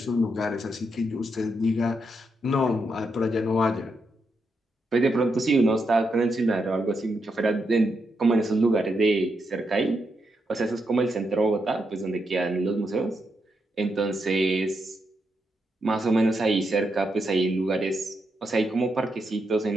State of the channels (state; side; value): normal; both; correlation 0.82